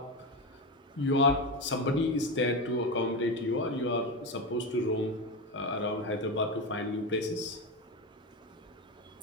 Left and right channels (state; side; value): normal; both; correlation 0.17